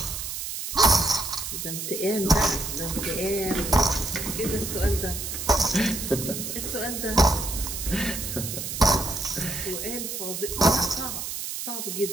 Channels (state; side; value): noise; right; hiss, 5 dB below the sound